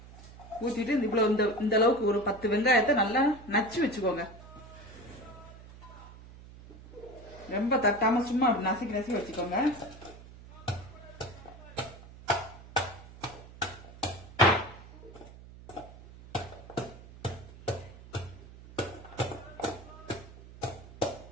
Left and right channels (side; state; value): right; noise; hum, 18 dB below the sound